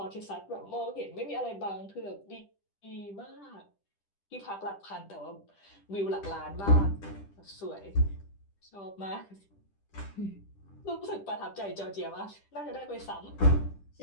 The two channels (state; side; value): late; right; 10 ms